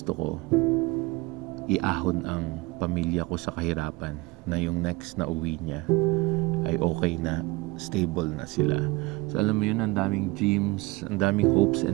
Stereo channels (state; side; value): quieter; left; 22.8 dB